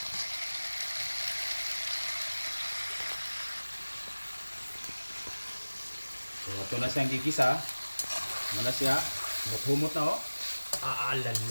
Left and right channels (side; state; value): both; inverted; correlation -1.00